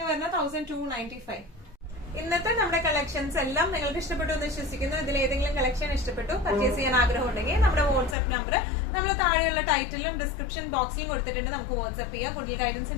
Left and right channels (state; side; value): drops out; right; at 8.2 s